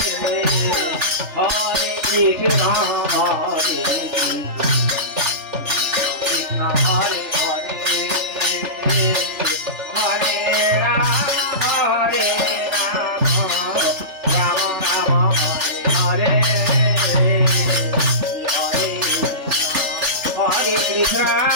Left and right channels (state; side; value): late; left; 3.4 ms